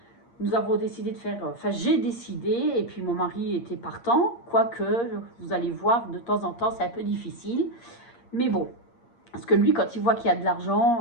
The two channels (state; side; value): late; right; 8.5 ms